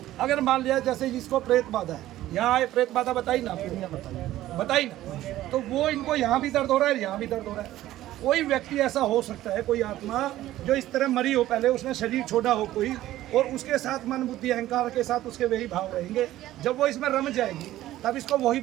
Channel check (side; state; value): left; quieter; 14.6 dB